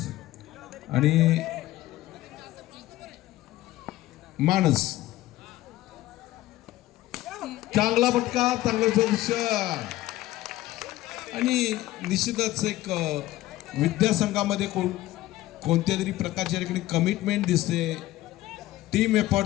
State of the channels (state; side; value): quieter; right; 16.1 dB